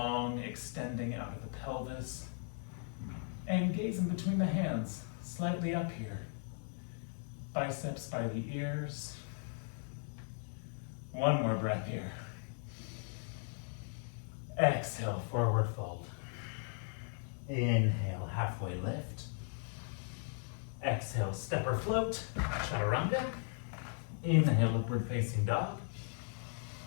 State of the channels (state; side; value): silent; right; 53 dB below the other